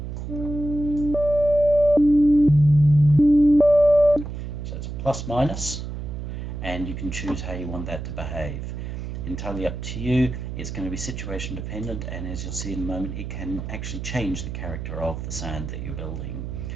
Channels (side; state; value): right; noise; hum, 7 dB below the sound